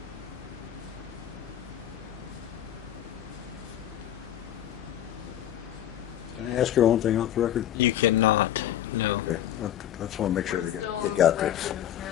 Can I ask her one thing off the record? You cannot, no. Okay, I just want to make sure Still they on got the this. record,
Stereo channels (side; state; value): right; quieter; 11.6 dB